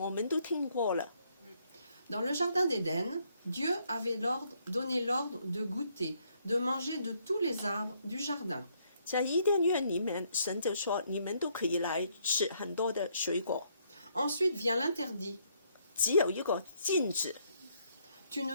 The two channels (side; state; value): both; inverted; correlation -0.71